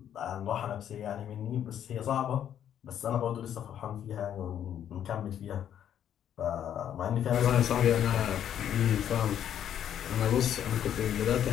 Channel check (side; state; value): right; quieter; 9.9 dB